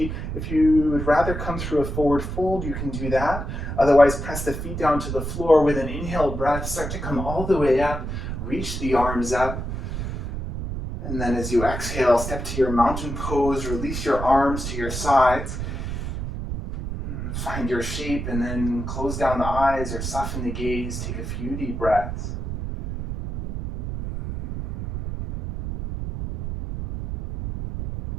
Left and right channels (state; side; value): noise; right; rumble, 5 dB below the sound